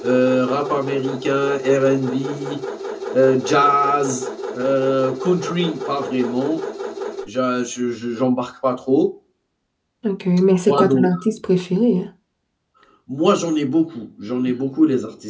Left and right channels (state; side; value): identical; both; correlation 1.00